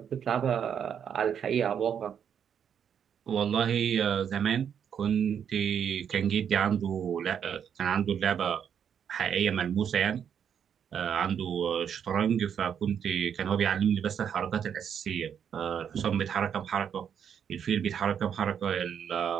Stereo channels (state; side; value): quieter; left; 8.1 dB